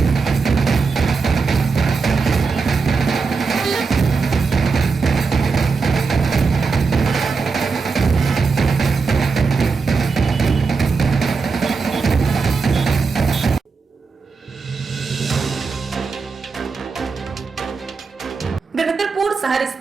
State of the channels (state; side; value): quieter; left; 4.7 dB